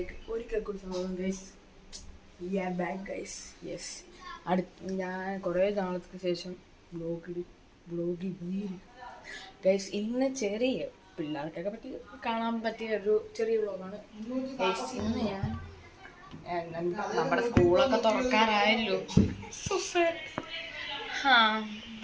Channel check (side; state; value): both; identical; correlation 1.00